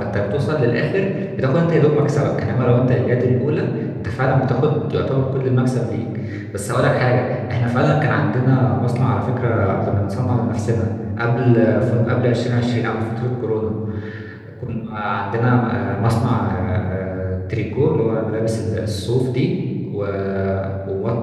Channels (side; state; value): both; identical; correlation 1.00